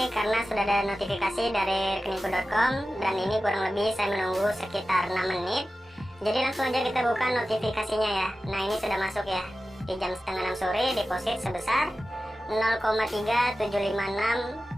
karena sudah ada notifikasi dari rekeningku.com, dan ini kurang lebih saya menunggu sekitar 6 menit. Jadi langsung aja kita buka notifikasinya ya. Nah, ini sudah masuk ya. Di jam setengah 6 sore, deposit sebesar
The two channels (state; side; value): normal; both; correlation 0.94